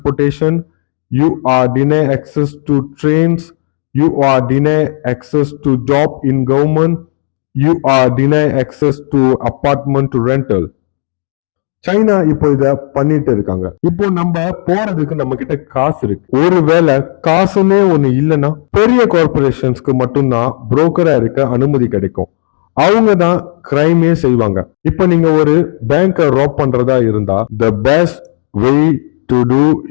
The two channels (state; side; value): silent; right; 60 dB below the other